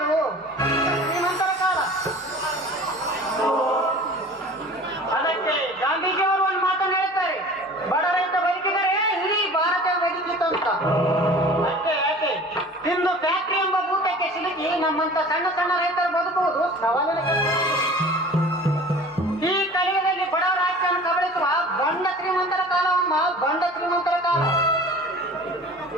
ಶ್ರೀಮಂತರ ಕಾಲ. ಅದಕ್ಕೆ ಗಾಂಧೀಜಿಯವರು ಒಂದು ಮಾತನ್ನು ಹೇಳ್ತಾರೆ, ಬಡ ರೈತ ಬದುಕಿದರೆ ಇಡೀ ಭಾರತ ಬದುಕಿತ್ತು ಅಂತ. ಅಷ್ಟೇ ಯಾಕೆ ಇಂದು ಫ್ಯಾಕ್ಟರಿ ಎಂಬ ಭೂತಕ್ಕೆ ಸಿಲುಕಿ ನಮ್ಮಂತ ಸಣ್ಣ ಸಣ್ಣ ರೈತರು ಬದುಕುವುದು ಸವಾಲಿನ ಕೆಲಸ. ಈ ಕಲಿಯುಗದಲ್ಲಿ ಬಡವರ ರಾಜ್ಯವನ್ನು ಕಬಳಿಸುವ ಬಂಡ ಶ್ರೀಮಂತರ ಕಾಲವಮ್ಮ, ಬಂಡ ಶ್ರೀಮಂತರ ಕಾಲ.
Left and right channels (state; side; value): normal; both; correlation 0.43